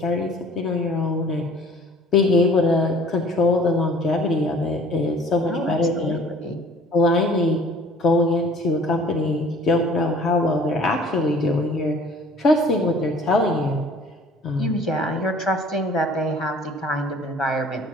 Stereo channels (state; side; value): normal; both; correlation 0.51